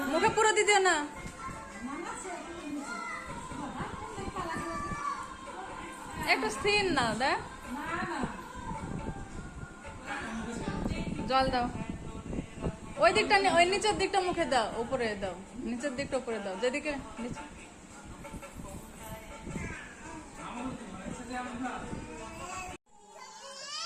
মুখে পুরো দিয়ে দিও না একটু স্থির না দেখ জল দাও ওই দিকটা ওই নিচের দিকটা মুখে দাও উপরে দাও নিচের দিকটা উপরে দাও যেদিকে নিচে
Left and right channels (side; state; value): both; identical; correlation 1.00